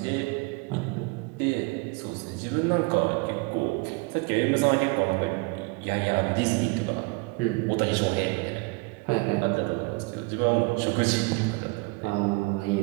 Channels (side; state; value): left; quieter; 27.4 dB